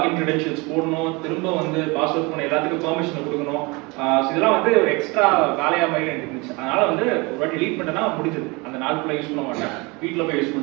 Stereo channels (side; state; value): left; quieter; 26.4 dB